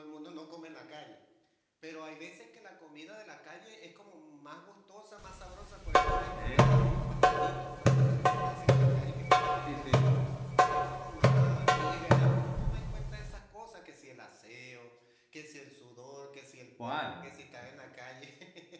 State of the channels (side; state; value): both; identical; correlation 1.00